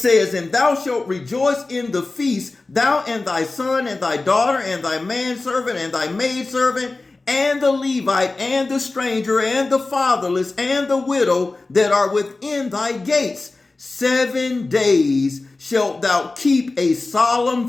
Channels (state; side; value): quieter; right; 3.4 dB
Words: and thou shalt rejoice in the feast, thou and thy son and thy daughter and thy manservant and thy maidservant and the Levite and the stranger and the fatherless and the widow that are within thy gates. 7 days shalt thou keep a solemn